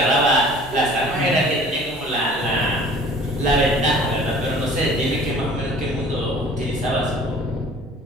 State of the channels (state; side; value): normal; both; correlation 0.48